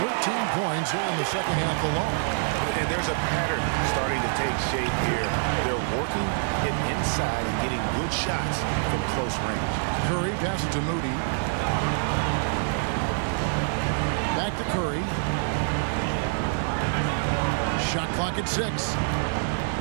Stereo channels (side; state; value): left; silent; digital silence